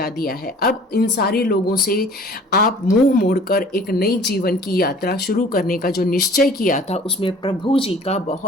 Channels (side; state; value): both; normal; correlation 0.49